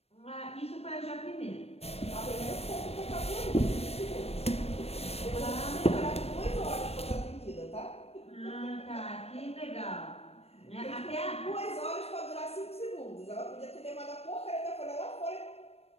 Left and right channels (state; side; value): late; right; 0.29 ms